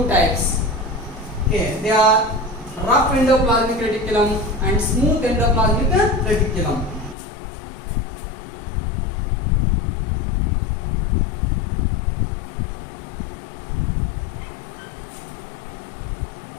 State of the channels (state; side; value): drops out; right; at 7.2 s